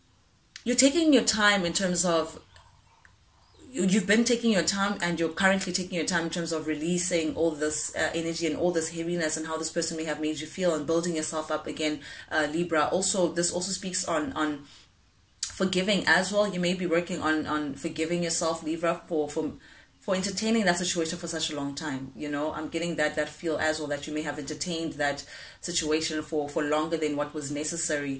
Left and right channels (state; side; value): identical; both; correlation 1.00